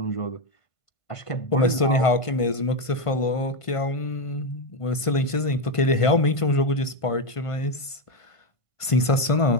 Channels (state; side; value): late; right; 1.5 ms